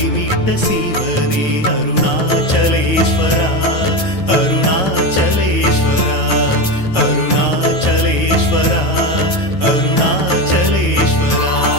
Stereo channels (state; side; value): late; right; 9.3 ms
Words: மீட்ட சிவனே அருணாச்சலேஸ்வரா அருணாச்சலேஸ்வரா அருணாச்சலேஸ்வரா அருணாச்சலேஸ்வரா